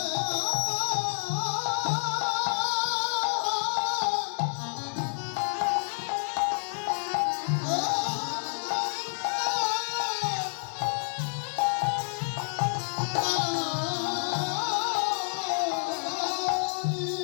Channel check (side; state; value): right; silent; digital silence